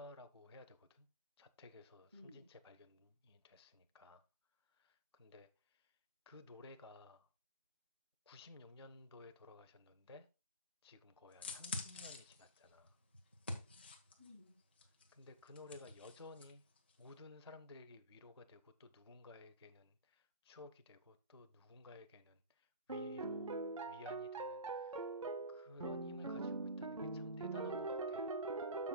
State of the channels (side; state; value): both; inverted; correlation -0.31